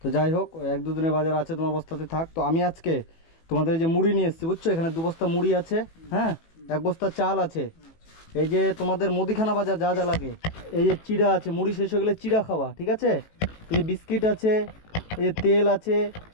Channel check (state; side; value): late; right; 18 ms